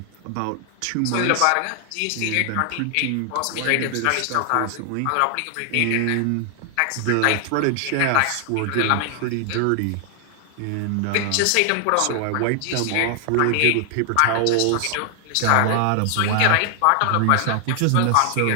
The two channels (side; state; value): both; different; correlation 0.00